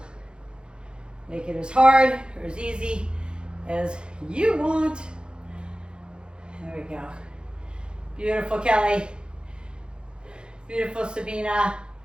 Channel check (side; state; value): left; late; 0.051 ms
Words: Make it as hard or as easy as you want. There we go. Beautiful, Kelly. Beautiful, Sabina.